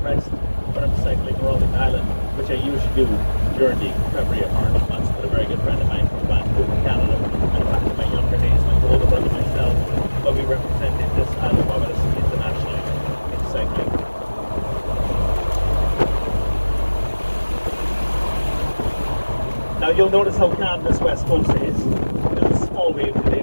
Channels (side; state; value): both; inverted; correlation -1.00